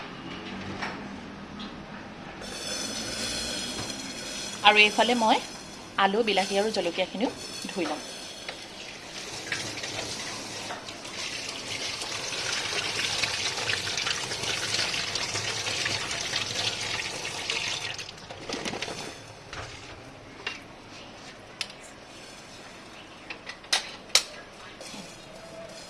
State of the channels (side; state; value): both; identical; correlation 1.00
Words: আৰু এইফালে মই আলু বিলাহী আৰু জলকীয়াখিনিও ধুই ল'ম।